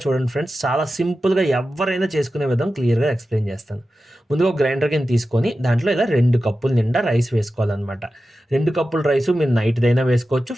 చూడండి ఫ్రెండ్స్. చాలా సింపుల్‌గా ఎవ్వరైనా చేసుకునే విధం క్లియర్‌గా ఎక్స్‌ప్లెయిన్ చేస్తాను. ముందుగా ఒక గ్రైండర్ గిన్నె తీసుకొని దాంట్లో ఇలా 2 కప్పుల నిండా రైస్ వేసుకోవాలనమాట. 2 కప్పుల రైసు మీరు నైట్‌దైనా వేసుకోవచ్చు.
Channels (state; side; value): normal; both; correlation 0.93